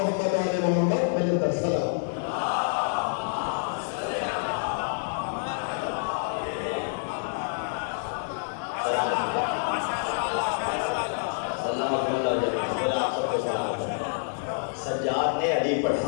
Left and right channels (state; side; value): silent; right; digital silence